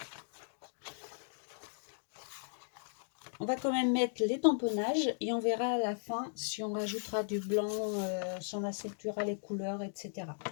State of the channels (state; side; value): silent; right; digital silence